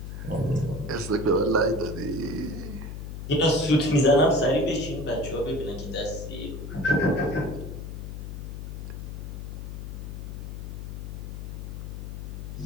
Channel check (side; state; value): left; noise; hum, 7 dB below the sound